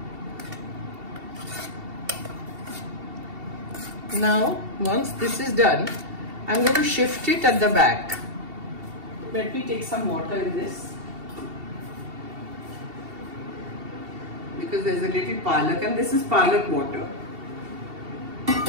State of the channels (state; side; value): late; left; 2.7 ms